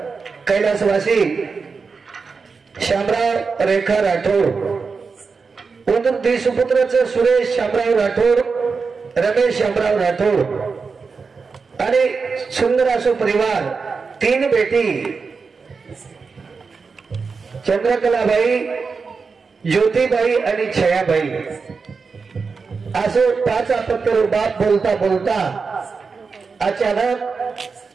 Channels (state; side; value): quieter; left; 4.9 dB